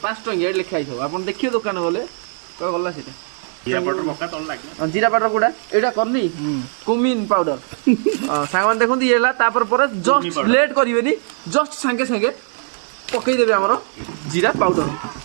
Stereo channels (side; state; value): left; silent; 55 dB below the other